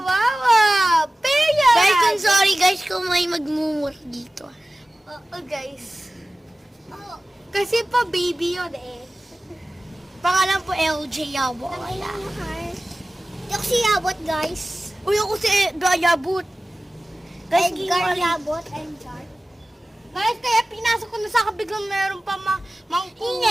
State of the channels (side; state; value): both; normal; correlation 0.97